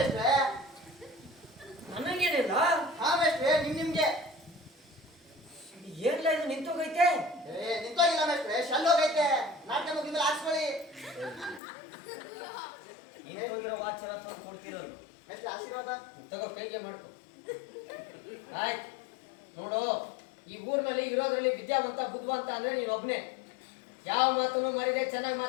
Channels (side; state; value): right; drops out; at 11.6 s